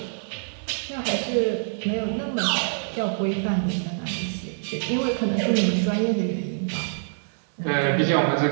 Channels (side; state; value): left; silent; digital silence